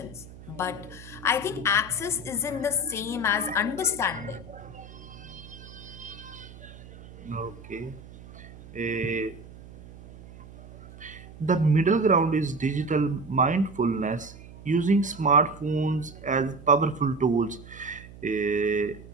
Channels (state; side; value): noise; right; hum, 18 dB below the sound